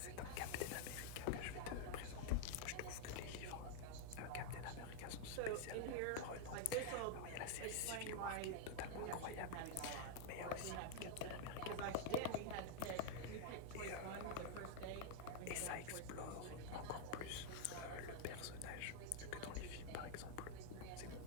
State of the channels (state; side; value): different; both; correlation 0.00